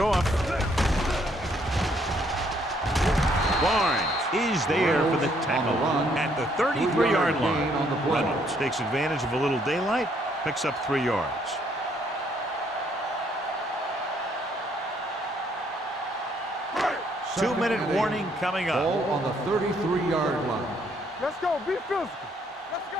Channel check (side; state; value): both; normal; correlation 0.68